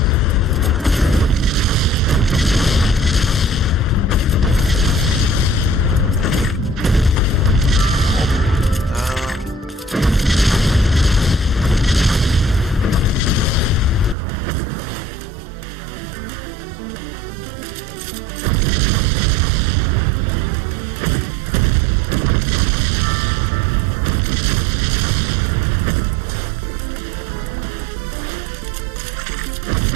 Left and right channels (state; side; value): drops out; left; at 14.2 s